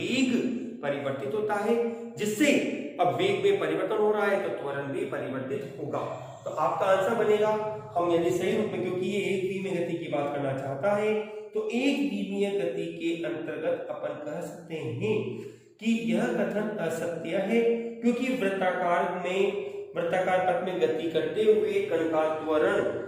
परिवर्तित होता है, जिससे अब वेग में परिवर्तन हो रहा है तो त्वरण भी परिवर्तित होगा। तो आपका आंसर बनेगा, हम यदि सही रूप में, क्योंकि ये एक द्विमीय गति की बात करना चाहता है, तो एक द्विमीय गति के अंतर्गत अपन कह सकते हैं कि यह कथन असत्य है, क्योंकि वृत्ताकार में वृत्ताकार पथ में गति करते हुए कण का त्वरण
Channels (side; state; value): both; identical; correlation 1.00